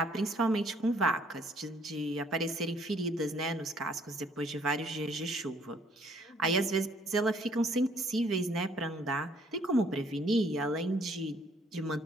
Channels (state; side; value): normal; both; correlation 0.63